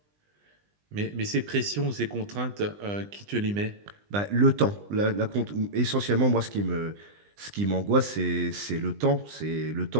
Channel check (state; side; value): late; left; 20 ms